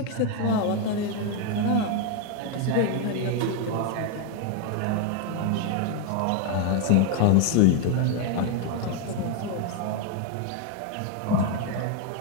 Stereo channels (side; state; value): both; different; correlation 0.01